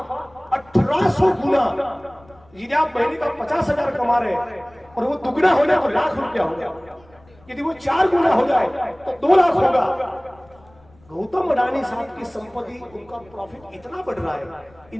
1800 गुना। यदि आप महीने का 50,000 कमा रहे हैं और वो दुगना हो जाए तो लाख रुपया हो गया, यदि वो 4 गुना हो जाए तो 2 लाख होगा। गौतम अडानी साहब की संपत्ति, उनका प्रॉफिट इतना बढ़ रहा है,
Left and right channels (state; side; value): noise; left; rumble, 28 dB below the sound